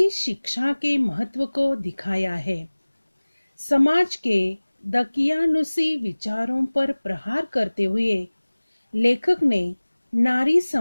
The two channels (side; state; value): both; inverted; correlation -1.00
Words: शिक्षा के महत्व को दिखाया है। समाज के दकियानुसी विचारों पर प्रहार करते हुए लेखक ने नारी